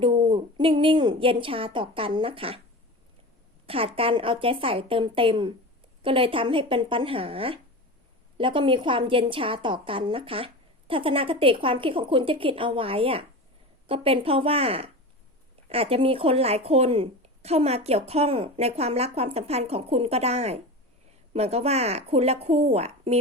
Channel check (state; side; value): normal; both; correlation 0.29